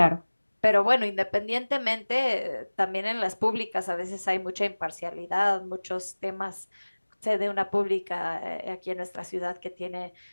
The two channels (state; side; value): inverted; both; correlation -1.00